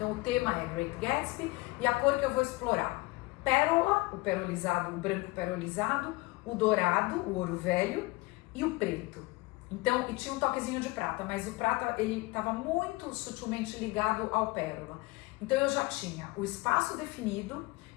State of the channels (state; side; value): quieter; right; 22.6 dB